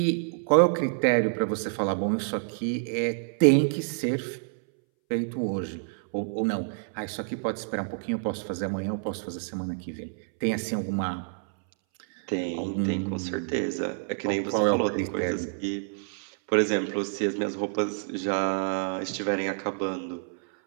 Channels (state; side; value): silent; left; 59 dB below the other